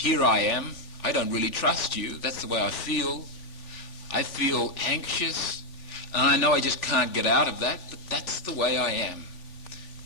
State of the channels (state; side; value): late; right; 3.4 ms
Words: I am. I don't really trust you. That's the way I feel. I feel anxious. And I know I just can't get out of that, but that's the way I am.